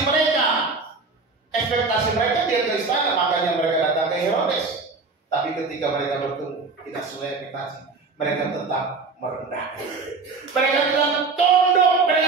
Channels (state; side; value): quieter; left; 4.1 dB